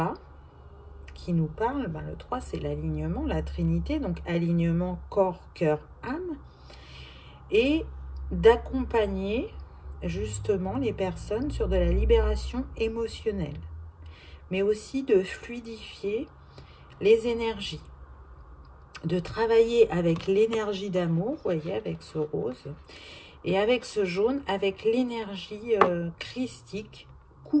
qui nous parle, ben le 3 c'est l'alignement, la trinité, donc alignement corps, cœur, âme, et d'accompagner justement les personnes sur de la libération émotionnelle, mais aussi de fluidifier les énergies, de travailler avec l'énergie d'amour, vous voyez, avec ce rose, et avec ce jaune, avec l'énergie christique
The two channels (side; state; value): both; identical; correlation 1.00